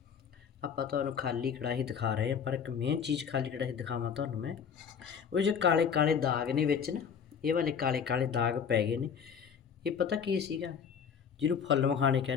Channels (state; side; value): quieter; right; 7.1 dB